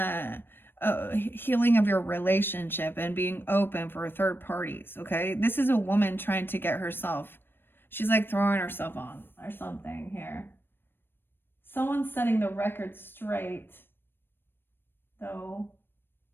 healing of your relationship and being open for third parties. Okay, this is a woman trying to get herself, she's like throwing herself on or something here. Someone's setting the record straight though,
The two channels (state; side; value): late; right; 0.099 ms